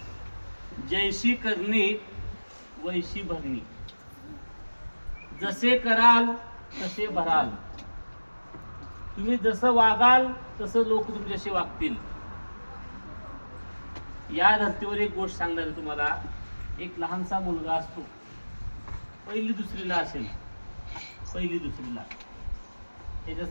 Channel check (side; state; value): both; inverted; correlation -1.00